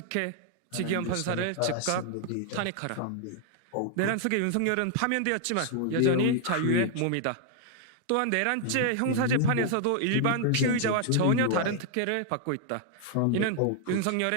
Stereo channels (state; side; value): different; both; correlation 0.00